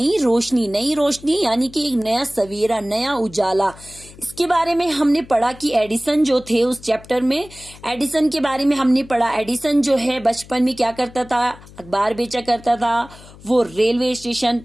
रोशनी। नई रोशनी यानी कि एक नया सवेरा, नया उजाला। इसके बारे में हमने पढ़ा कि एडिसन जो थे उस चैप्टर में, एडिसन के बारे में हमने पढ़ा। एडिसन जो है बचपन में क्या करता था, अखबार बेचा करता था। वो रेलवे स्टेशन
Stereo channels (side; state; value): left; noise; hum, 21 dB below the sound